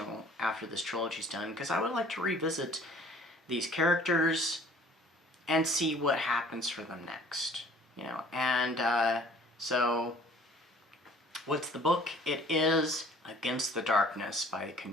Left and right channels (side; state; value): both; normal; correlation 0.53